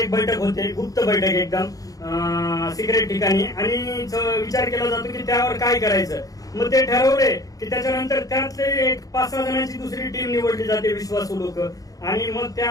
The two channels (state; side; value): late; right; 0.17 ms